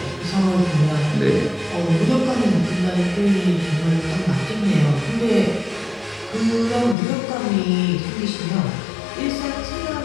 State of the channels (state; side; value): drops out; right; at 7.0 s